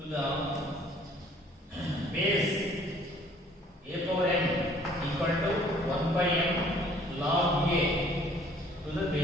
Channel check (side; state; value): both; normal; correlation 0.57